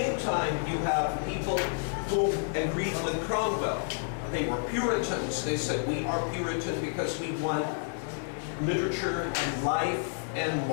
time, you have people who agreed with Cromwell. They were Puritans. They said, "We are Puritan because we want literature and life and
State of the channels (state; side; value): silent; right; digital silence